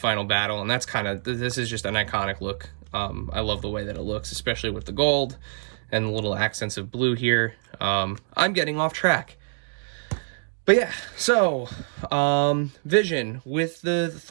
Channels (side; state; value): left; silent; 61 dB below the other